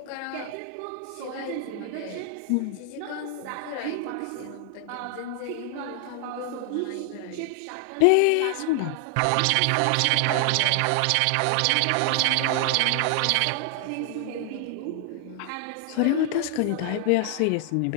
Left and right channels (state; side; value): different; both; correlation 0.00